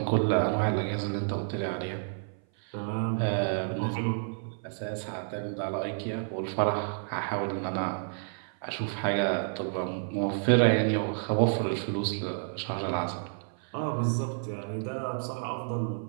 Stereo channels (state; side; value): silent; left; 56 dB below the other